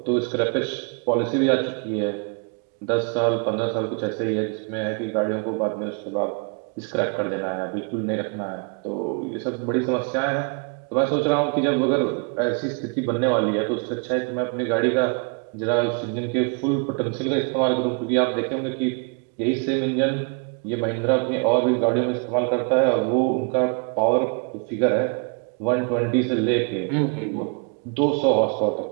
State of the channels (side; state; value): left; quieter; 37.8 dB